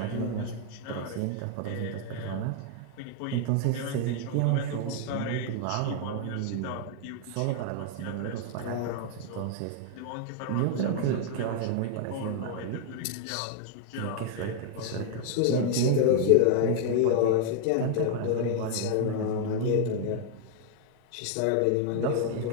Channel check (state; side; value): different; both; correlation 0.00